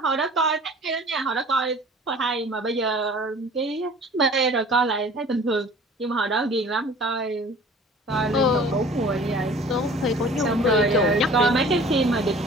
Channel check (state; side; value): normal; both; correlation 0.47